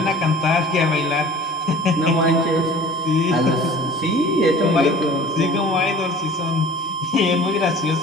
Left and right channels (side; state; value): both; normal; correlation 0.45